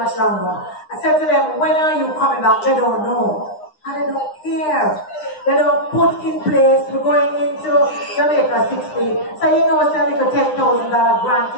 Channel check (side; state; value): right; late; 9.8 ms